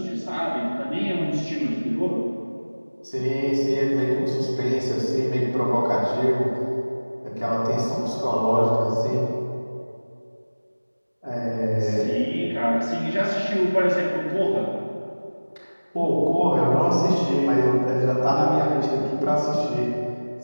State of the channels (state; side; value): inverted; both; correlation -1.00